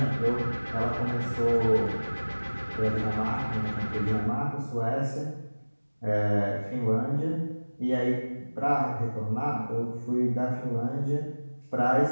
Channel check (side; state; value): both; inverted; correlation -1.00